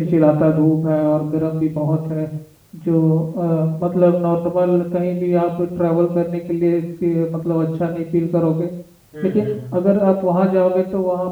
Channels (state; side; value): identical; both; correlation 1.00